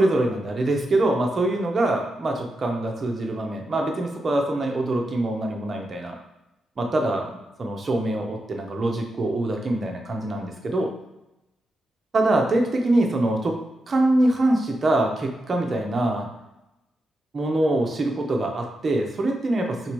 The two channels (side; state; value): both; normal; correlation 0.88